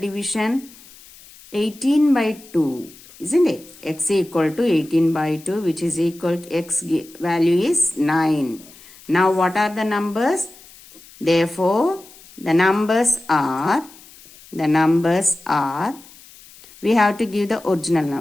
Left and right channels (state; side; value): noise; left; hiss, 22 dB below the sound